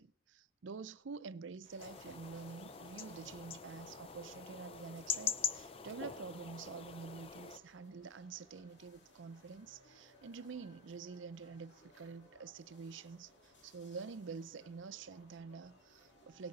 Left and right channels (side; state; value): both; normal; correlation 0.11